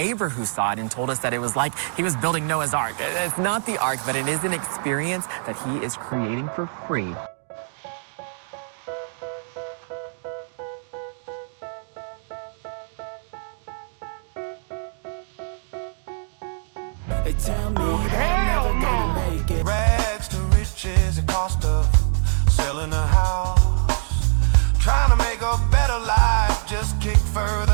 who saw it and told us that it was like he was building Noah's Ark. It's not the Ark, but it is an experience that he is creating for free. They tell me that I'm never gonna make it. Rags to riches, the cost of selling a house. Trying to make a better life, just kick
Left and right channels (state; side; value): silent; left; digital silence